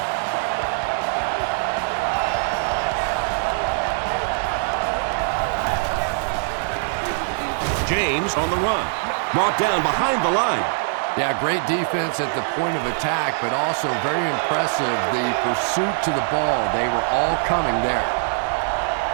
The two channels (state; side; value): silent; left; digital silence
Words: James on the run. Brought down behind the line. Yeah, great defense at the point of attack, but also very impressive the pursuit to the ball. They were all coming there.